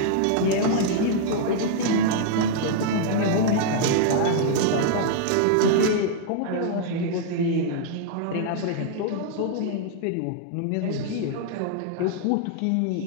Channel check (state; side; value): different; both; correlation -0.01